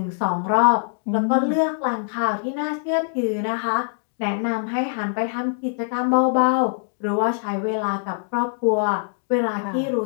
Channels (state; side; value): silent; right; digital silence